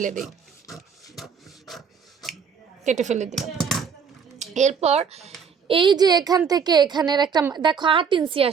দিই, কেটে ফেলে দিলাম। এরপর এই যে এখান থেকে এখানের একটা, দেখো 8 ইঞ্চি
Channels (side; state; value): left; quieter; 6.5 dB